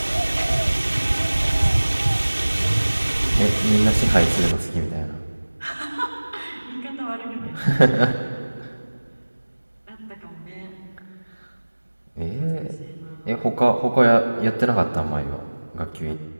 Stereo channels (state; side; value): inverted; both; correlation -1.00